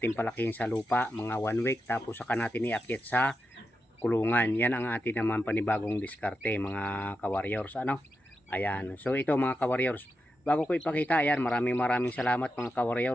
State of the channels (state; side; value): normal; both; correlation 0.88